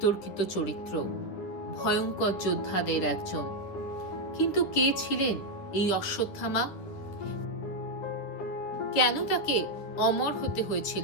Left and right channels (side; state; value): right; late; 10 ms